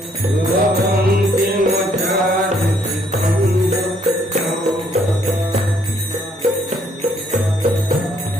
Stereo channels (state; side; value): normal; both; correlation 0.67